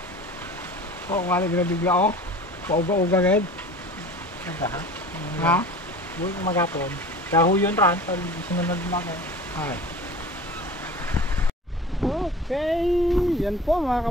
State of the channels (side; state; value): both; normal; correlation 0.40